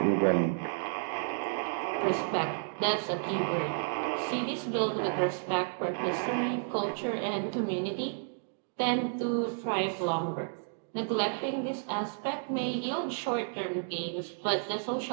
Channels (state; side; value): silent; left; digital silence